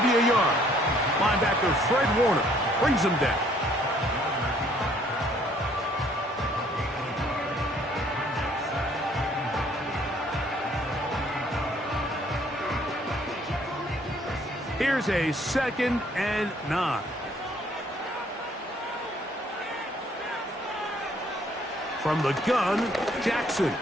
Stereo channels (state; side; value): normal; both; correlation 0.62